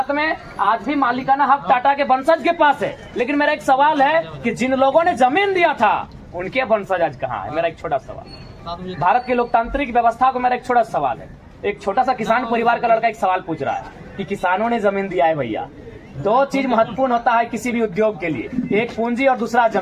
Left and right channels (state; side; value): identical; both; correlation 1.00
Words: में, आज भी मालिकाना हक टाटा के वंशज के पास है। लेकिन मेरा एक सवाल है कि जिन लोगों ने जमीन दिया था उनके वंशज आज कहाँ है? मेरा एक छोटा सवाल। भारत की लोकतांत्रिक व्यवस्था को मेरा एक छोटा सवाल है। एक छोटा सा किसान परिवार का लड़का एक सवाल पूछ रहा है कि किसानों ने जमीन दिया है भैया। दो चीज महत्वपूर्ण होता है किसी भी उद्योग के लिए, एक पूंजी और दूसरा